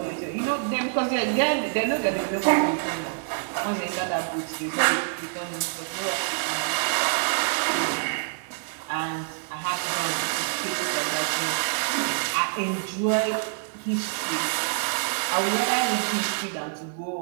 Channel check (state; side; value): silent; left; digital silence